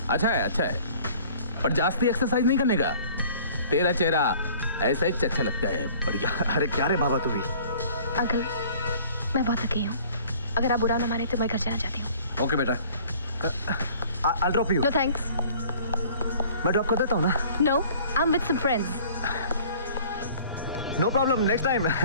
अच्छा है, अच्छा है, पर जास्ती एक्सरसाइज नहीं करने का। तेरा चेहरा ऐसा ही अच्छा लगता है, बढ़िया। अरे क्या रे बाबा तू भी? अंकल, मैं बहुत थकी हूँ, अगर आप बुरा ना माने तो मैं घर जाना चाहती हूँ। ओके बेटा। I'll drop you. No thanks. मैं ड्रॉप कर देता हूँ ना। No, I am with some friends. No problem, next time.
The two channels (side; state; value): both; inverted; correlation -0.51